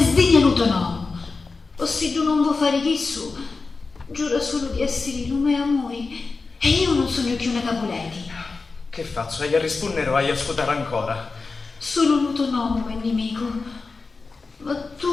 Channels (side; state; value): right; quieter; 4.1 dB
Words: l'utonomo. O se tu non vuoi fare chi su, giura solo di essere lume amori e io non sono più una Capuleti. Che faccio? Hai a rispondere o hai a ascoltare ancora? Solo l'utonomo è nemico. Ma